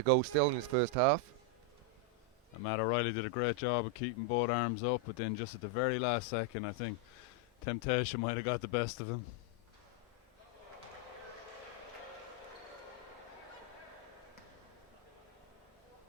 go still in his first half. And Matt O'Reilly did a great job of keeping both arms up, but then just at the very last second, I think temptation might have got the best of him.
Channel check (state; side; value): normal; both; correlation 0.00